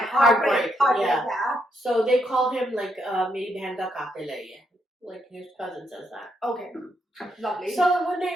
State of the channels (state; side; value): normal; both; correlation 0.78